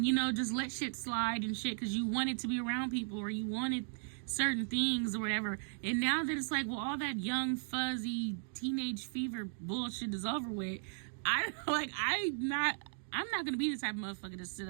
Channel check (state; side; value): silent; left; digital silence